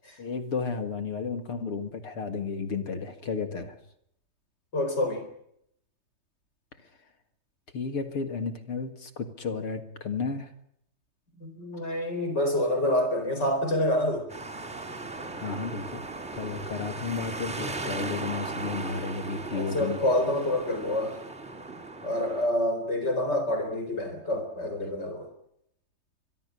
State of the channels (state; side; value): late; right; 3.2 ms